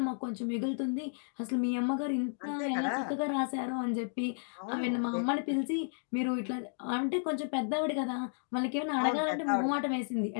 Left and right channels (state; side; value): silent; right; digital silence